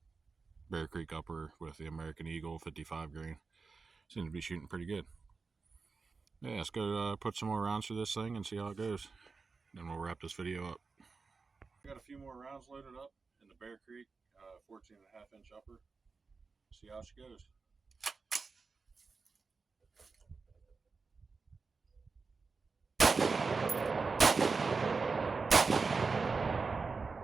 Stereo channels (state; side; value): quieter; left; 4.5 dB